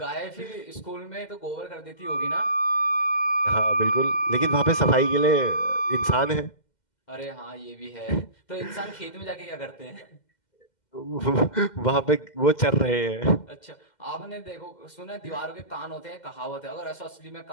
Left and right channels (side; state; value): right; late; 2.1 ms